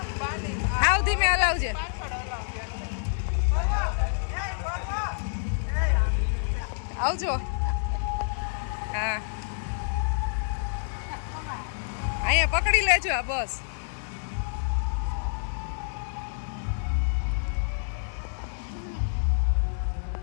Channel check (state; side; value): silent; right; digital silence